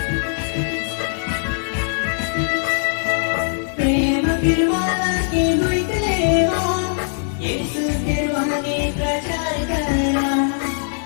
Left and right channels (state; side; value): silent; right; digital silence